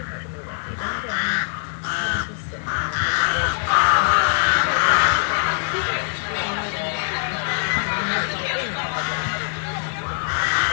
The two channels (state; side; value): silent; right; digital silence